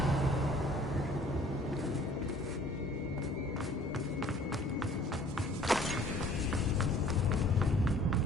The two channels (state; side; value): normal; both; correlation 0.53